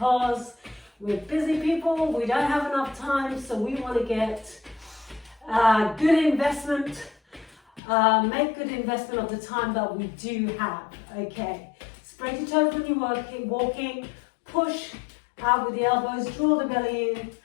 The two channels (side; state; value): right; drops out; at 7.8 s